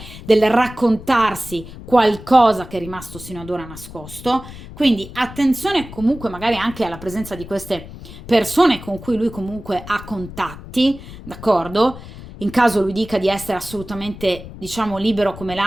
del raccontarsi qualcosa che è rimasto sino ad ora nascosto. Quindi attenzione comunque magari anche alla presenza di queste persone con cui lui comunque ha contatti, d'accordo? In caso lui dica di essere assolutamente, diciamo, libero come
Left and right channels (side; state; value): left; noise; rumble, 14 dB below the sound